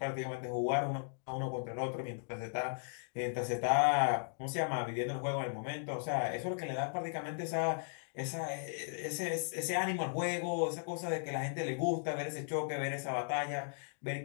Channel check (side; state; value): right; silent; digital silence